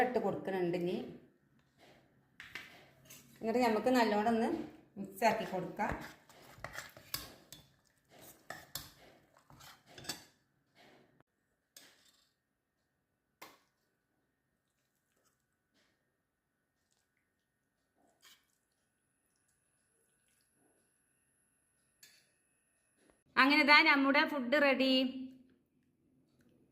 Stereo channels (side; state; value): both; identical; correlation 1.00